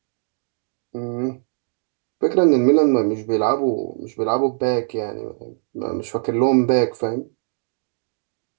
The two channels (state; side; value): silent; left; digital silence